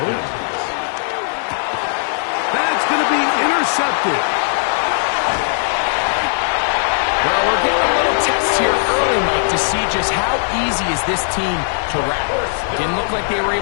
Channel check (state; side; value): silent; right; digital silence